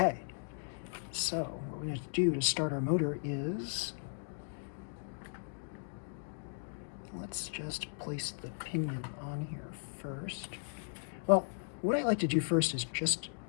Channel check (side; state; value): right; silent; digital silence